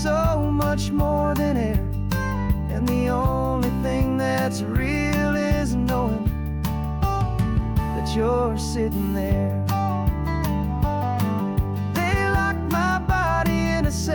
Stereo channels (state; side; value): identical; both; correlation 1.00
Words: so much more than air, and the only thing that's real is knowing that you're sitting there. They locked my body in a